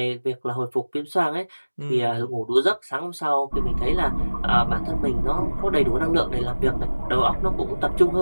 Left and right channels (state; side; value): inverted; both; correlation -1.00